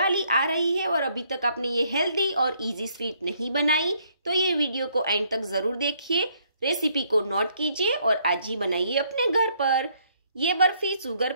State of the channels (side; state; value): both; inverted; correlation -0.68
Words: आ रही है और अभी तक आपने ये हेल्दी और इजी स्वीट नहीं बनाई तो ये वीडियो को एंड तक जरूर देखिए। रेसिपी को नोट कीजिए और आज ही बनाइए अपने घर पर। ये बर्फी शुगर